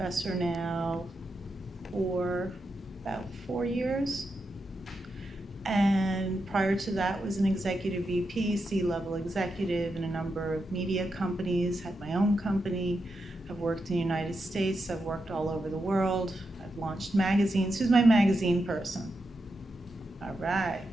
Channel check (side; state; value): both; normal; correlation 0.86